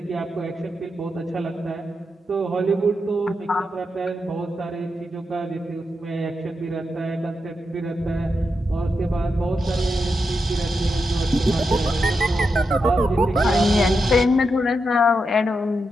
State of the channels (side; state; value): both; normal; correlation 0.86